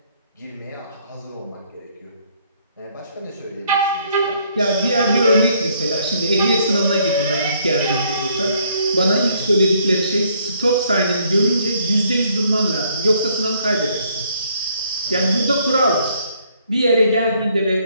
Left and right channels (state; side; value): inverted; both; correlation -0.67